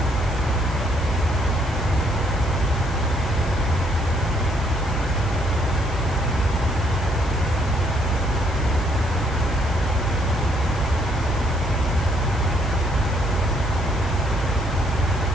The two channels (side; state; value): left; noise; hiss, 21 dB below the sound